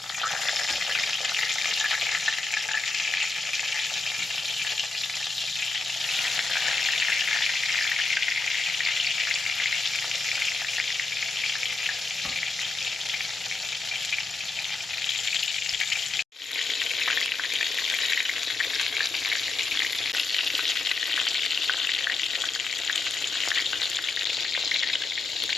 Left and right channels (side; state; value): right; quieter; 3.7 dB